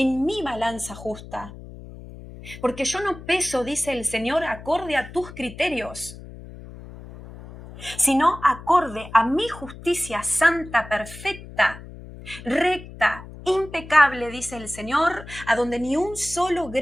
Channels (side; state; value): left; noise; hum, 15 dB below the sound